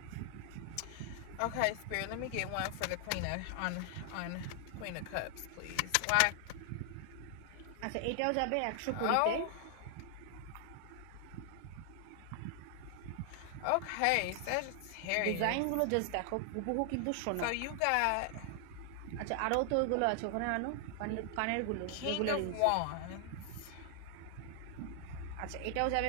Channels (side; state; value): both; different; correlation 0.00